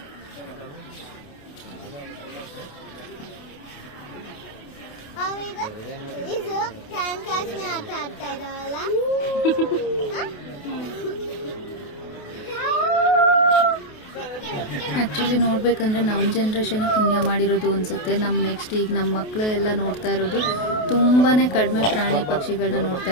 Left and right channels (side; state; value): right; late; 28 ms